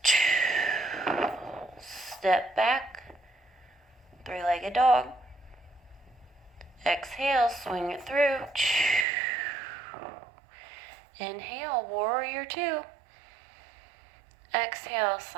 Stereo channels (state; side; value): drops out; left; at 9.1 s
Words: Step back, three-legged dog. Exhale, swing it through. Inhale, warrior two. Exhale,